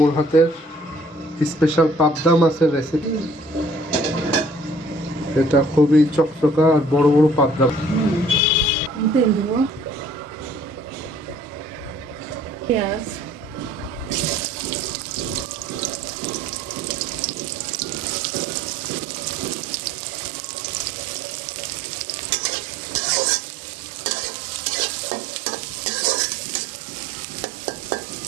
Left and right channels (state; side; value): normal; both; correlation 0.55